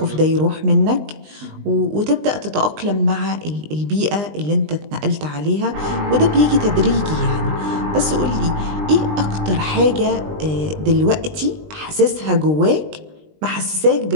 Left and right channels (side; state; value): left; late; 20 ms